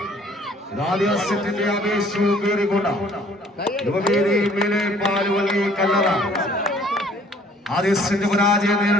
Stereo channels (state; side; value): normal; both; correlation 0.57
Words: ആവേശവും കയറിക്കൊണ്ട യുവവേദി മേലെ പാലുവള്ളി കല്ലറ ആദ്യ സെറ്റ് പരാജയം